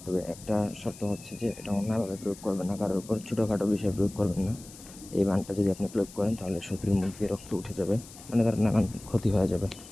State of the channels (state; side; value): noise; left; hiss, 18 dB below the sound